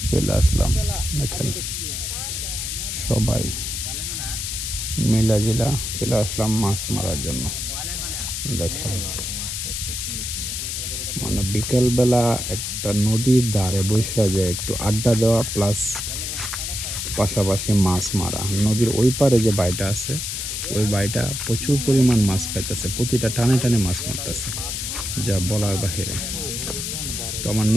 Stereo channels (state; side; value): noise; left; hiss, 4 dB below the sound